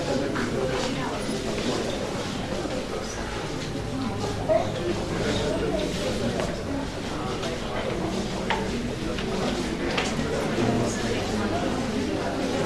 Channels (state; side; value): identical; both; correlation 1.00